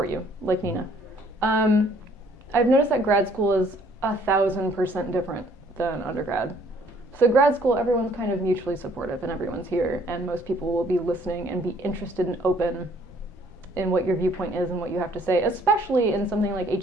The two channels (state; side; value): normal; both; correlation 0.61